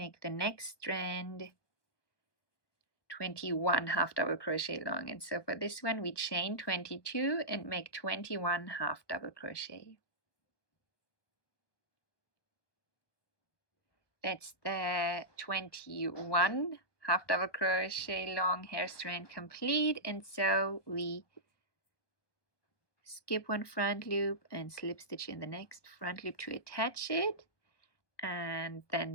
the next strand 21 half double crochet long, and so for this one we chain 22 and make 21 half double crochet. That's the 21 half double crochet long hair strand complete, and so we skip one front loop and slip stitch in the next front loop to attach it, and then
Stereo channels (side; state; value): right; late; 1.2 ms